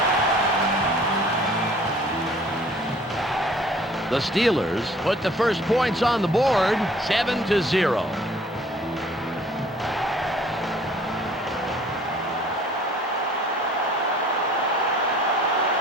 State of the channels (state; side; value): normal; both; correlation 0.54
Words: The Steelers put the first points on the board, 7-0.